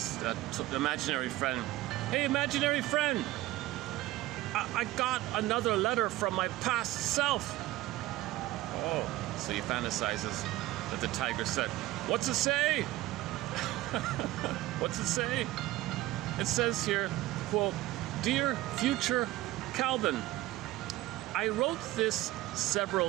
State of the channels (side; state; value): left; quieter; 16.9 dB